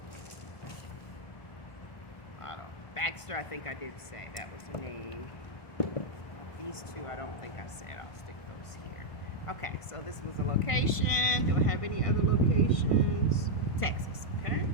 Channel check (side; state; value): right; late; 1.5 ms